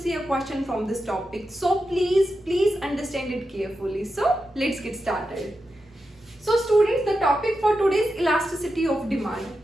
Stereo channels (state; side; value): normal; both; correlation 0.89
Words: a question from this topic. So please understand it carefully. So let's get started. So students, the topic for today is elasticity of demand.